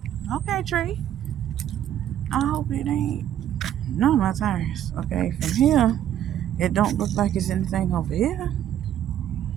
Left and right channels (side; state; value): left; quieter; 10.9 dB